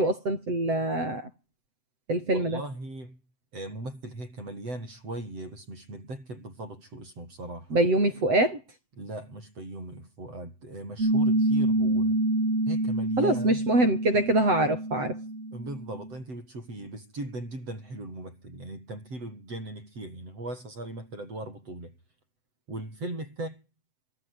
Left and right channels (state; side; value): late; left; 7.9 ms